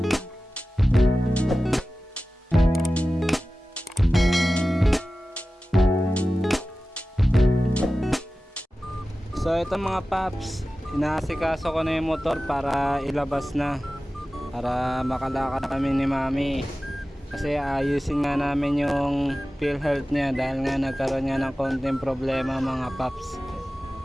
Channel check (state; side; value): normal; both; correlation 0.95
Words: So ito mga paps, inaasikaso ko na yung motor para ilabas na, para makalakad kami ni Mami. Kasi ayusin nga namin yung PhilHealth niya dahil nga nagkaroon nga ng konting problema mga paps.